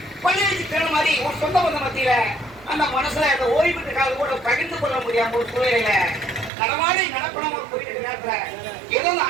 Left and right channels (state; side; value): drops out; left; at 6.5 s